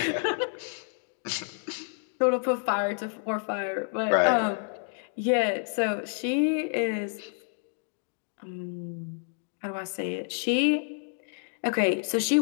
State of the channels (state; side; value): silent; right; 59 dB below the other